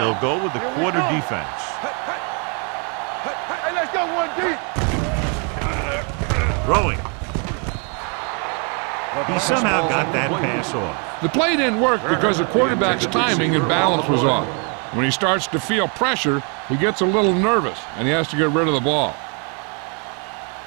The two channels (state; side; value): quieter; left; 37.4 dB